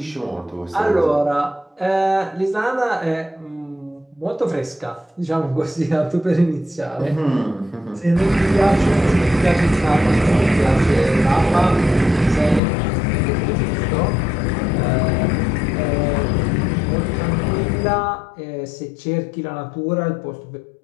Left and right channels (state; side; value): drops out; right; at 12.6 s